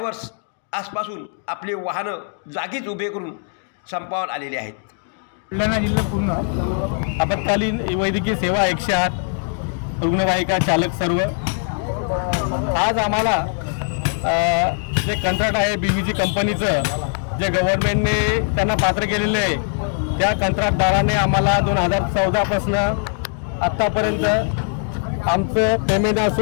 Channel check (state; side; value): silent; right; 64 dB below the other